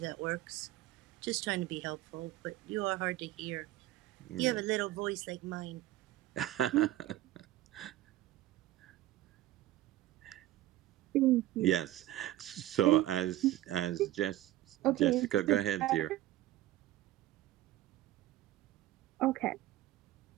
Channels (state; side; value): quieter; left; 14.8 dB